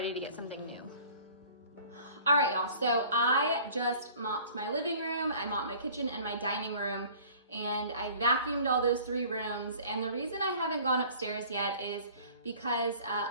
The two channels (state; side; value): inverted; both; correlation -0.49